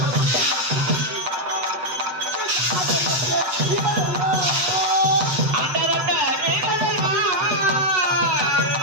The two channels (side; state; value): left; late; 8.1 ms